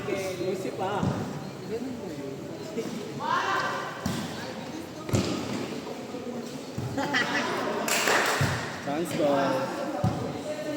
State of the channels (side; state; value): both; identical; correlation 1.00